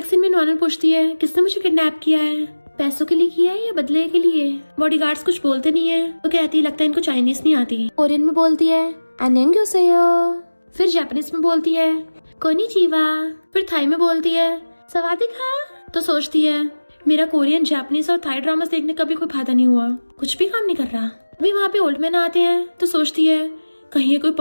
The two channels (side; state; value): both; inverted; correlation -1.00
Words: सीन में नोआनो पूछती है किसने मुझे किडनैप किया है, पैसों के लिए किया है या बदले के लिए? बॉडीगार्ड्स कुछ बोलते नहीं है। तो कहती है लगता है इनको चाइनीज नहीं आती। कोरियन में बोलती है अन्यंग्योसेयो। फिर जापानीज में बोलती है कोनिचिवा। फिर थाई में बोलती है सवादिका। तो सोचती है मेरा कोरियन, जापानीज और थाई ड्रामास देखने का भी कोई फायदा नहीं हुआ, कुछ भी काम नहीं कर रहा। अभी वहाँ पे ओल्ड मैन आते हैं तो सोचती है कहीं ये कोई